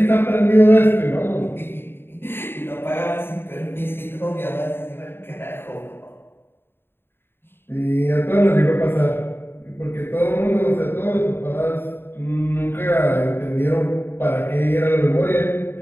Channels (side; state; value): right; late; 0.11 ms